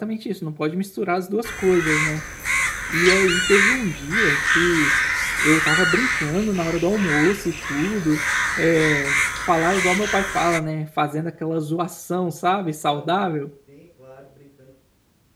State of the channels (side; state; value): both; identical; correlation 1.00